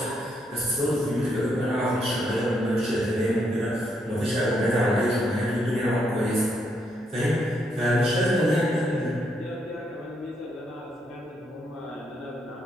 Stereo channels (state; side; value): normal; both; correlation 0.76